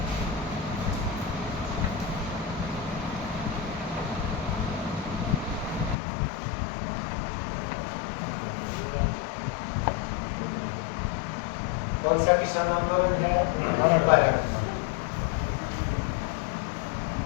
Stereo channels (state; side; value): drops out; right; at 6.0 s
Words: कौन सा किसान आंदोलन है? भारत।